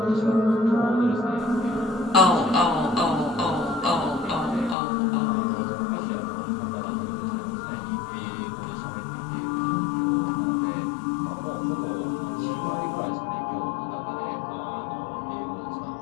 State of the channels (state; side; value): drops out; right; at 4.8 s